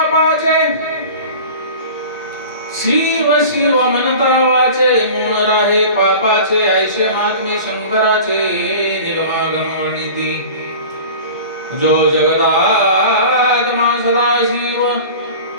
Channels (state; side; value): inverted; both; correlation -0.38